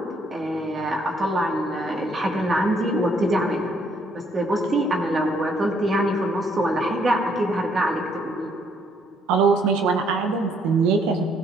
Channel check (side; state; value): both; normal; correlation 0.68